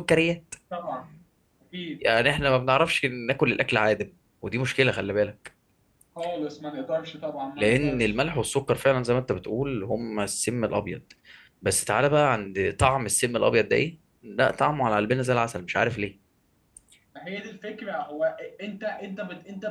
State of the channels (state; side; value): identical; both; correlation 1.00